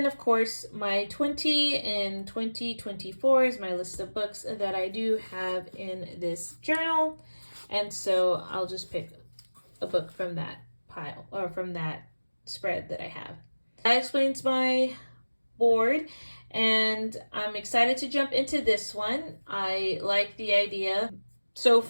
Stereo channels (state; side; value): inverted; both; correlation -1.00